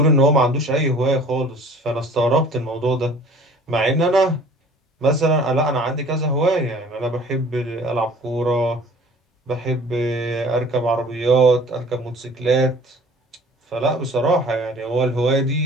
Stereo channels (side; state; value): both; normal; correlation 0.49